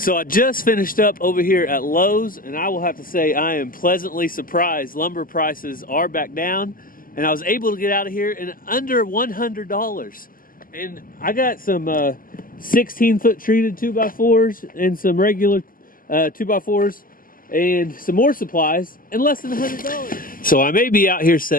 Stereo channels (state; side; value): late; right; 0.41 ms